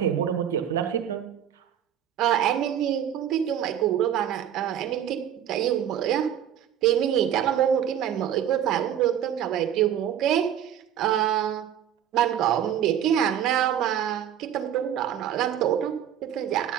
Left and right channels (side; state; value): left; quieter; 10.0 dB